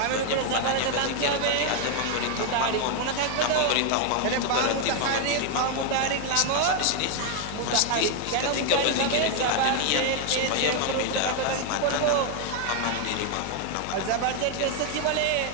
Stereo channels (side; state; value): both; different; correlation 0.01